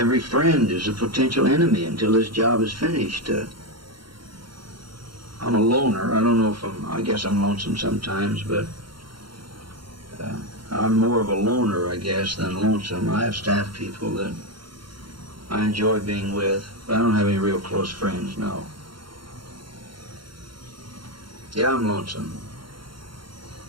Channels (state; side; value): late; left; 0.73 ms